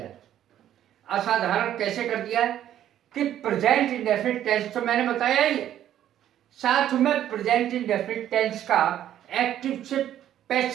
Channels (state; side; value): quieter; left; 11.4 dB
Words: है। असाधारण कैसे कर दिया है कि प्रेजेंट इंडेफिनिट टेंस तो मैंने बताया ही है, साथ में प्रेजेंट इंडेफिनिट टेंस का एक्टिव से